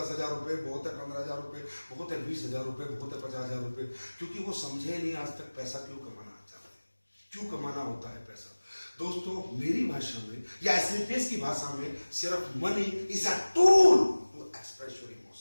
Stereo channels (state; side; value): inverted; both; correlation -1.00